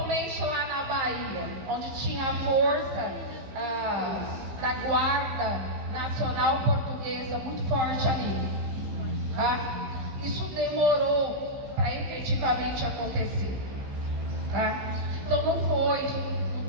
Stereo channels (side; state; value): left; late; 15 ms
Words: lá na Bahia, onde tinha a força da Guarda Nacional Portuguesa muito forte ali. Tá? Isso demorou para efetivamente acontecer. Tá? Então não foi